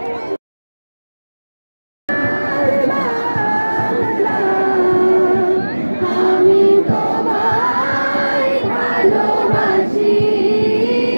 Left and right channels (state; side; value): inverted; both; correlation -1.00